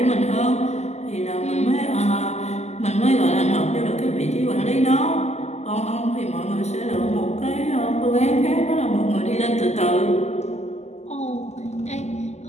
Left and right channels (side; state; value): right; late; 0.33 ms